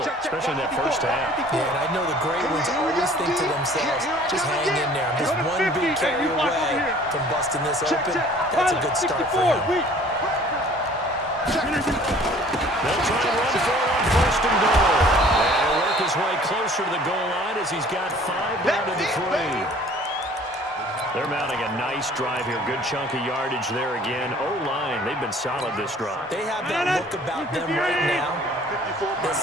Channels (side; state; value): both; normal; correlation 0.52